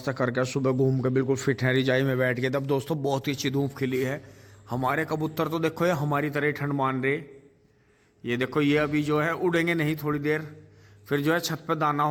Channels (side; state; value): both; identical; correlation 1.00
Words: करके सुबह घूम के बिल्कुल फिट हैं, रिजाई में बैठ के। तब दोस्तों बहुत ही अच्छी धूप खिली है। हमारे कबूतर तो देखो ये हमारी तरह ही ठंड मान रहे। ये देखो ये अभी जो है उड़ेंगे नहीं थोड़ी देर, फिर जो है छत पे दाना